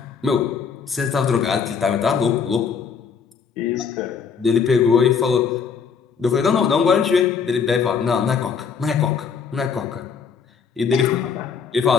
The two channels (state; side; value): quieter; right; 6.2 dB